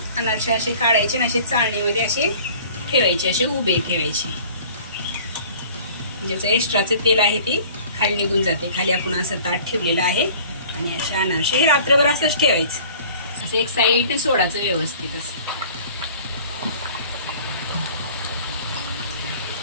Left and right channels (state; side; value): inverted; both; correlation -0.48